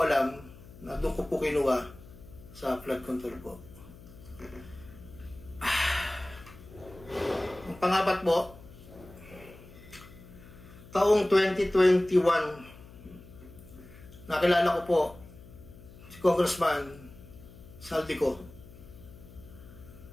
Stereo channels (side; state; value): left; noise; hum, 19 dB below the sound